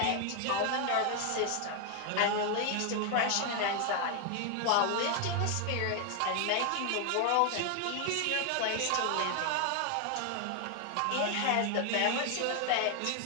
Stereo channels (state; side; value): different; both; correlation 0.00